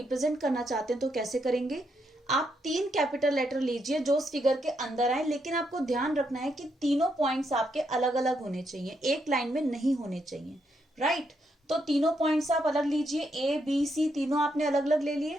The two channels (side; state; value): both; normal; correlation 0.78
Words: करना चाहते हैं तो कैसे करेंगे। आप 3 कैपिटल लेटर लीजिए जो उस फिगर के अंदर आए, लेकिन आपको ध्यान रखना है कि तीनों पॉइंट्स आपके अलग अलग होने चाहिए, एक लाइन में नहीं होने चाहिए, राइट। तो तीनों पॉइंट्स आप अलग लीजिए, ए बी सी तीनों आपने अलग अलग ले